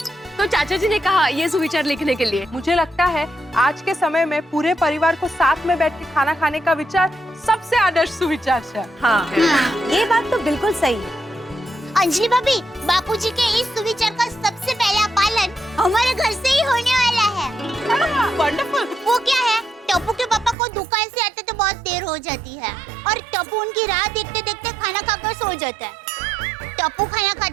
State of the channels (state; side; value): drops out; left; at 20.6 s